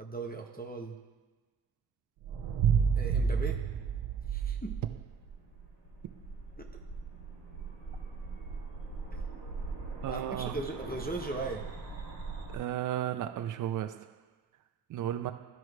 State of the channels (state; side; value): quieter; left; 6.3 dB